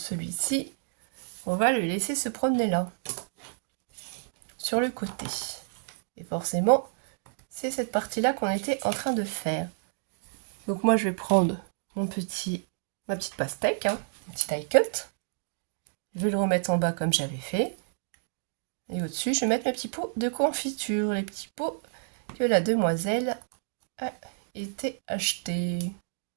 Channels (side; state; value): left; silent; digital silence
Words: on va le laisser se promener là. Sur le côté. Et forcément, c'est cette partie-là qu'on était en train de faire. Donc moi, je vais prendre ma petite pastèque, hein, mon petit die cut. Je vais le remettre en bas comme j'avais fait. Et au-dessus, je vais mettre mes petits pots de confiture. Les petits pots que la demoiselle a été achetés.